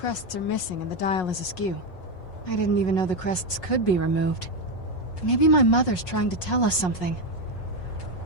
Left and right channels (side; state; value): right; late; 5.5 ms